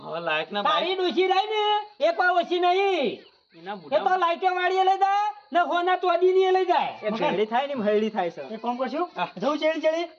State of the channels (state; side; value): identical; both; correlation 1.00